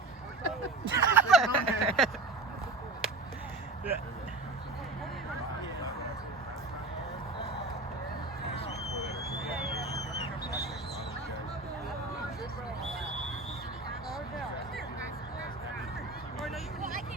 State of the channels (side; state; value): left; quieter; 3.3 dB